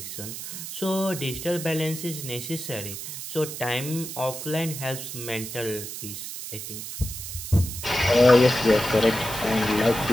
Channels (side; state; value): right; noise; hiss, 8 dB below the sound